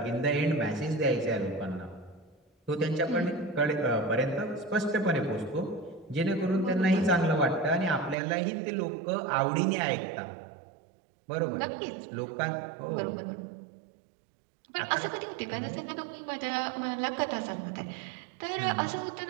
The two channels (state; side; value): drops out; left; at 8.2 s